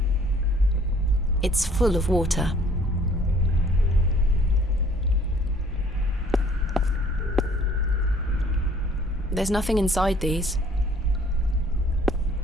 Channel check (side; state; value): both; normal; correlation 0.57